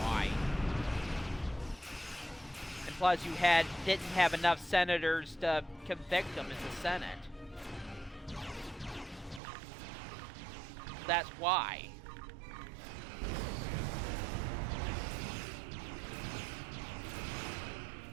And plus, didn't have enough senators to convict him in the Senate. That's why.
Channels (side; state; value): left; drops out; at 9.4 s